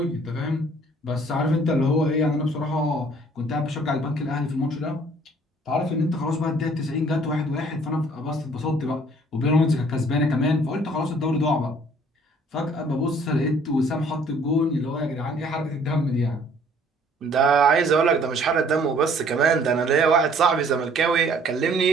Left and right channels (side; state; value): both; normal; correlation 0.57